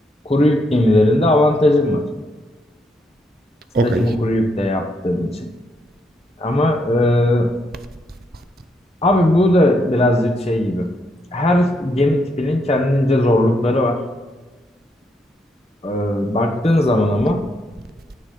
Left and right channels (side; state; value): both; normal; correlation 0.77